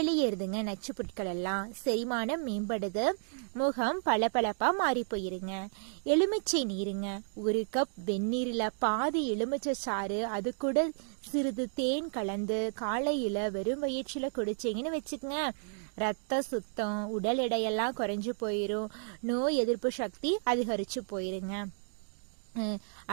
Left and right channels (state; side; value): silent; left; digital silence